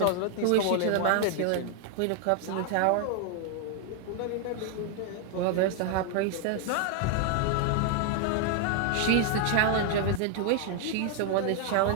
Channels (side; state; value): both; different; correlation 0.00